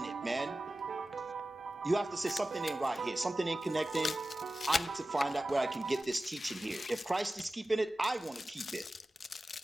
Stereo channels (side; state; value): both; normal; correlation 0.95